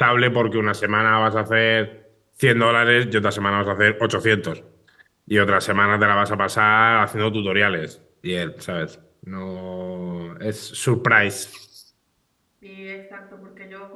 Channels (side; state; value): both; identical; correlation 1.00